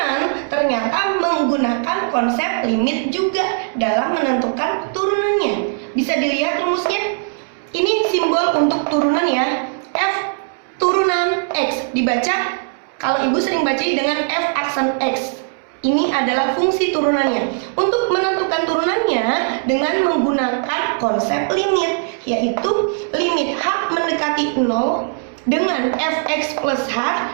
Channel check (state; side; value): silent; left; 66 dB below the other